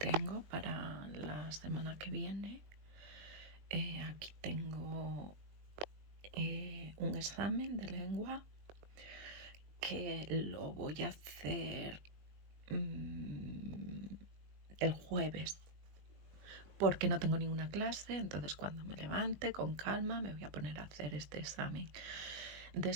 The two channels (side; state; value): left; late; 20 ms